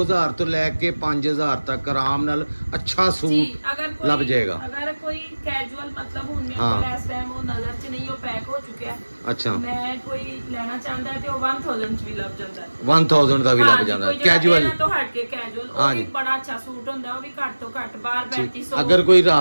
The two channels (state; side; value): inverted; both; correlation -1.00